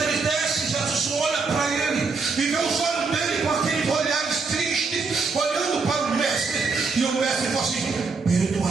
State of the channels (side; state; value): left; quieter; 4.5 dB